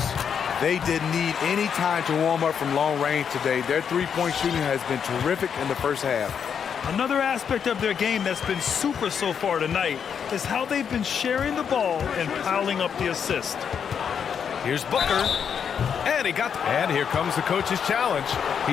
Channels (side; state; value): right; quieter; 7.4 dB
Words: They didn't need any time to warm up from long range today. Their three-point shooting has been terrific in the first half. Another aspect of their game that's been super so far tonight is how they've been sharing the ball and piling up the assist. Here's Booker. And here comes the coach's challenge.